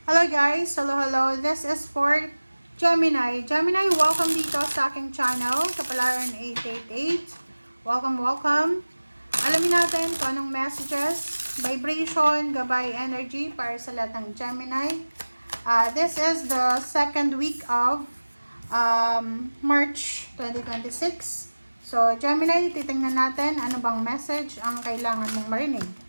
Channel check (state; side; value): inverted; both; correlation -1.00